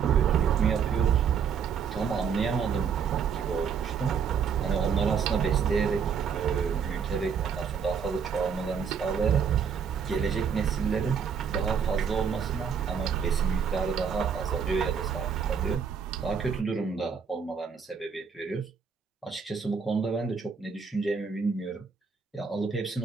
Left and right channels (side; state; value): left; quieter; 6.6 dB